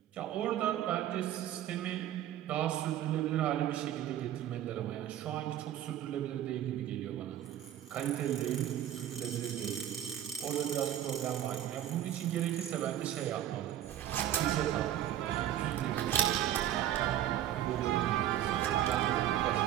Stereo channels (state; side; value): quieter; left; 11.7 dB